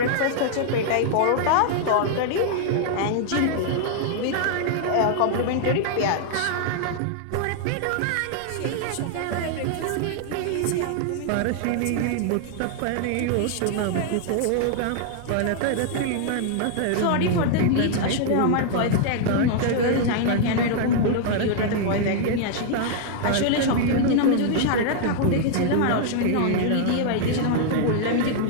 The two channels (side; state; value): both; different; correlation -0.01